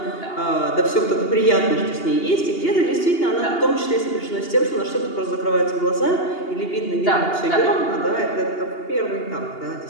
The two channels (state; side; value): late; right; 2.8 ms